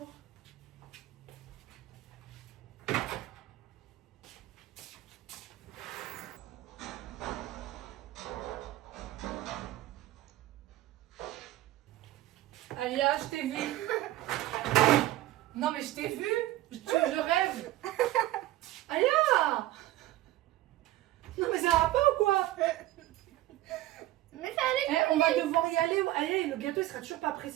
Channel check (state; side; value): quieter; left; 15.7 dB